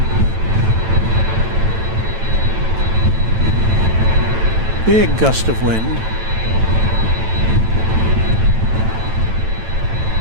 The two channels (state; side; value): late; left; 9.0 ms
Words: Big gust of wind.